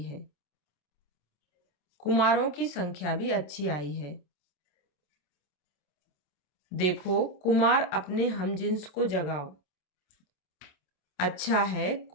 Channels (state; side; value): late; right; 27 ms